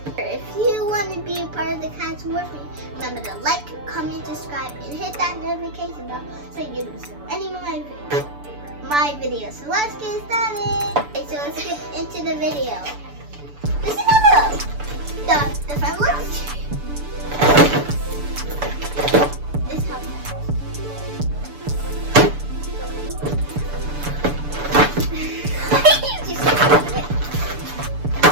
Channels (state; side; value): late; left; 6.9 ms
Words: if you want to be a part of the cast with me, remember to like, comment, subscribe, and hit that notification bell so you don't miss any of my videos. So let's get started. Okay, so let's get into the video. This is how the front looks. This is how it